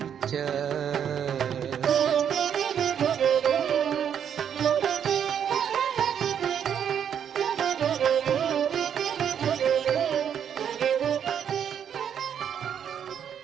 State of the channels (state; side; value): quieter; left; 8.5 dB